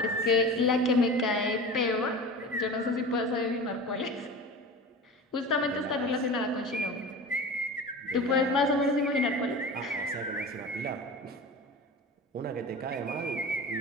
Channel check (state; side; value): normal; both; correlation 0.33